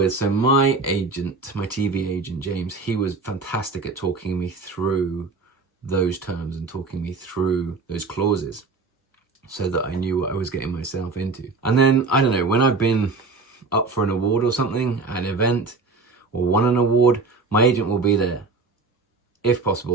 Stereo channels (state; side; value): quieter; left; 4.2 dB